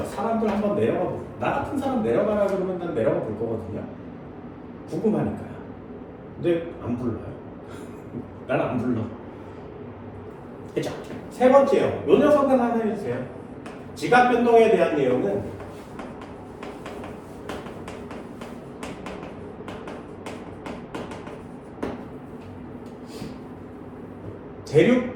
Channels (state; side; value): identical; both; correlation 1.00